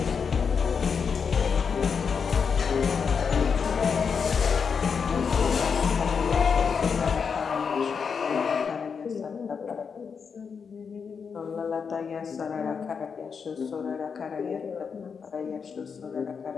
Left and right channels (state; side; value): quieter; right; 6.1 dB